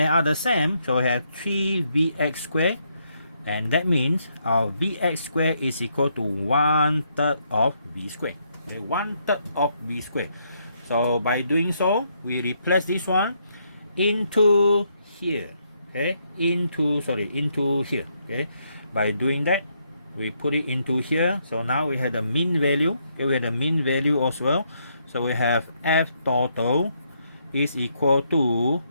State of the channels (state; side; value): inverted; both; correlation -0.75